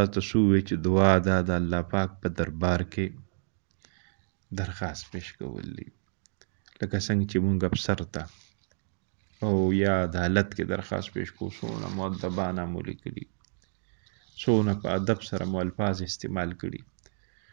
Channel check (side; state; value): left; silent; digital silence